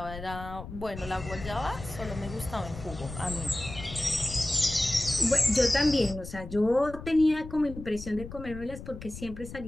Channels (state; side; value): noise; left; rumble, 12 dB below the sound